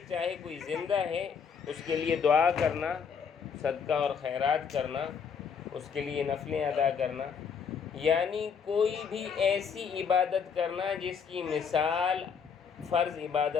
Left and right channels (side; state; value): right; quieter; 6.5 dB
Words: چاہے کوئی زندہ ہے، اس کے لیے دعا کرنا، صدقہ اور خیرات کرنا، اس کے لیے نفلیں ادا کرنا، یعنی کوئی بھی ایسی عبادت کرنا جس کی مثال فرض